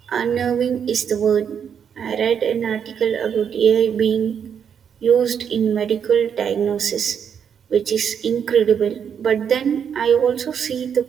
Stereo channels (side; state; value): left; quieter; 7.7 dB